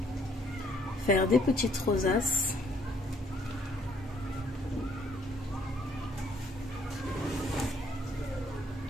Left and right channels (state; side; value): normal; both; correlation 0.65